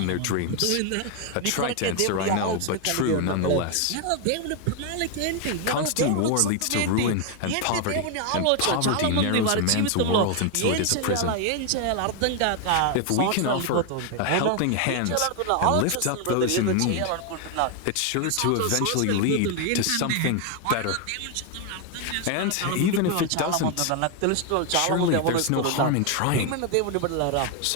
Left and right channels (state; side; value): different; both; correlation 0.01